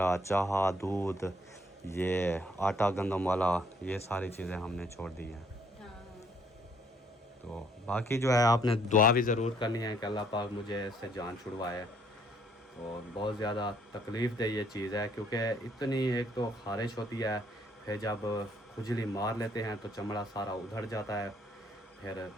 चाह, दूध, ये आटा गंदम वाला, ये सारी चीज़ें हमने छोड़ दी हैं। तो बाकी जो है आपने दुआ भी ज़रूर करनी है कि अल्लाह पाक मुझे इससे जान छुड़वाए। और बहुत ज़्यादा तकलीफ़ दे ये चीज़ है, क्योंकि इतनी एक तो ख़ारिश होती है, फिर जब खुजली मार लेते हैं तो चमड़ा सारा उधड़ जाता है, फिर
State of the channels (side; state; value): both; normal; correlation 0.65